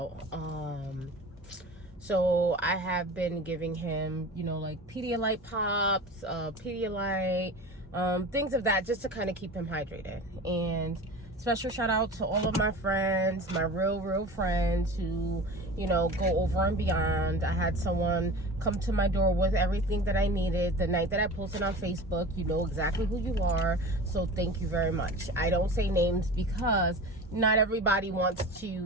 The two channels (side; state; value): both; normal; correlation 0.35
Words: So I have been giving him, like Pedialyte pops, Pedialyte, things of that, just to kind of keep him hydrated. And special shout out to all of my friends, my real friends who, go over and beyond. I had someone come to my door with everything that I needed the night that I posted on Facebook. You know exactly who you are. So thank you very much. I don't say names because not everybody wants